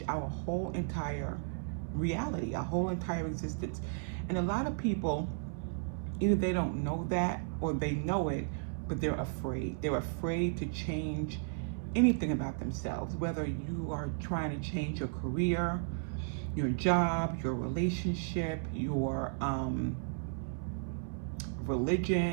our whole entire reality, our whole entire existence. And a lot of people, either they don't know that or they know it, but they're afraid. They're afraid to change anything about themselves, whether you are trying to change your career, your job, your relationship, your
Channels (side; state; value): left; silent; 55 dB below the other